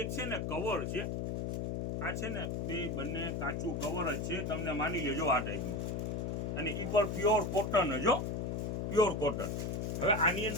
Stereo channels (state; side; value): noise; left; hum, 2 dB below the sound